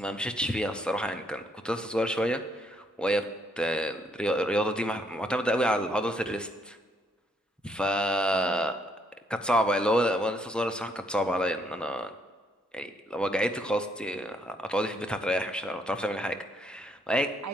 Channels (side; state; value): both; normal; correlation 0.71